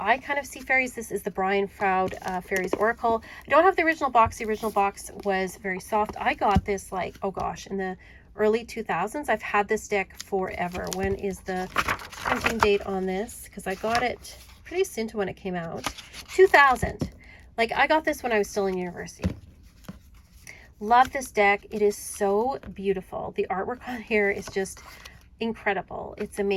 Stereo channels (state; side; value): identical; both; correlation 1.00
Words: kind of see fairies. This is the Brian Froud Fairies Oracle. I don't have the original box. The original box was very soft. I got this like, oh gosh, in the early 2000s. I've had this deck forever. When is the printing date on this? Because I got it pretty soon to when it came out. 2000. Like, I got this when I was still in university. Love this deck. It is so beautiful. The artwork on here is just incredible. It's